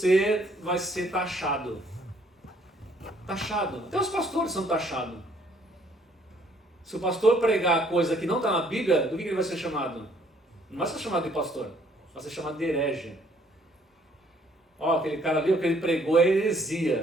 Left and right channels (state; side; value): normal; both; correlation 0.64